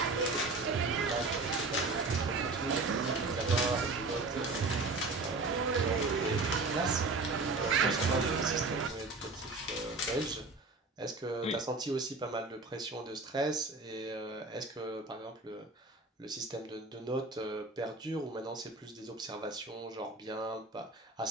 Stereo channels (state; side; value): quieter; left; 3.5 dB